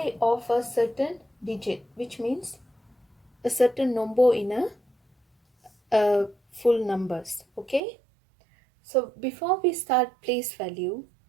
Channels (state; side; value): drops out; left; at 7.8 s